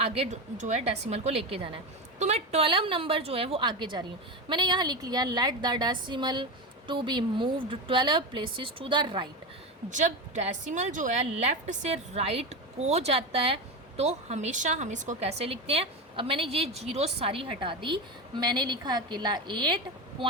जो है डेसिमल को लेके जाना है। तो मैं 12 नंबर जो है वो आगे जा रही हूँ। मैंने यहाँ लिख लिया let the decimal to be moved 12 places to the right. जब डेसिमल जो है लेफ़्ट से राइट को जाता है तो हमेशा हम इसको कैसे लिखते हैं। अब मैंने ये जीरो सारी हटा दी, मैंने लिखा अकेला 8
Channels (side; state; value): both; normal; correlation 0.18